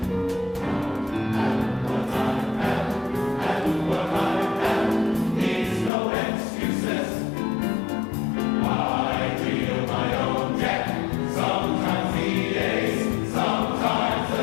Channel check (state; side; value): drops out; right; at 5.9 s